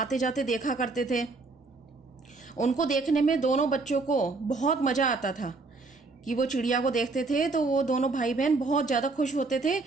जाते देखा करते थे। उनको देखने में दोनों बच्चों को बहुत मजा आता था कि वो चिड़िया को देखते थे तो वो दोनों भाई बहन बहुत ज़्यादा खुश होते थे।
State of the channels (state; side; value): quieter; left; 3.7 dB